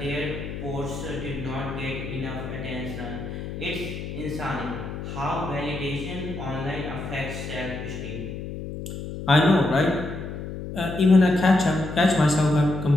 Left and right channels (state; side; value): noise; left; hum, 8 dB below the sound